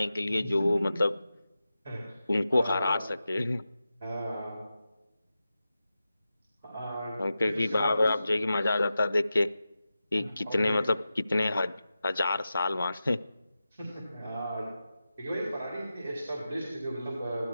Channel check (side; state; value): both; inverted; correlation -0.92